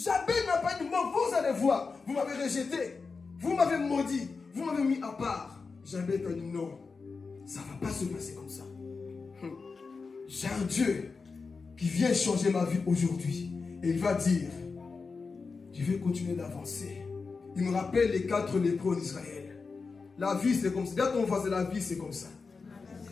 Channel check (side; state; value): right; quieter; 4.6 dB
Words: n'a pas dit, moi, vous allez voir. Vous m'avez rejeté. Vous m'avez maudit. Vous m'avez mis à part. Jabez a dit, non, ça ne va pas se passer comme ça. J'ai un Dieu qui vient changer ma vie aujourd'hui. Et il va dire, je vais continuer d'avancer. Il me rappelle les 4 lépreux d'Israël. La vie, c'est comme ça. Regarde ton voisin, la vie, c'est comme ça.